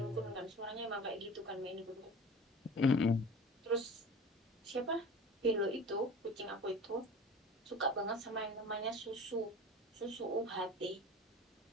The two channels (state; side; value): normal; both; correlation 0.38